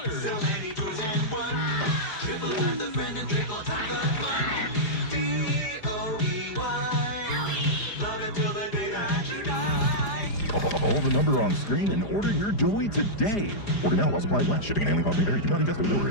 So many toys and one. Triple time the friend and triple time the fun. D-O-E-Y. Love it till the day that you die. Call the number on screen and order your toy today. Order now while supplies last. Shipping and handling costs may vary. Do not invest or deliver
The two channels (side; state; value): right; late; 4.9 ms